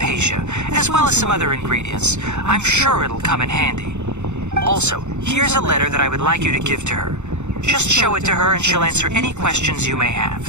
as well as some other ingredients. I'm sure it'll come in handy. Also, here's a letter that I would like you to give to her. Just show it to her and she'll answer any questions you may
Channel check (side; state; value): left; late; 0.83 ms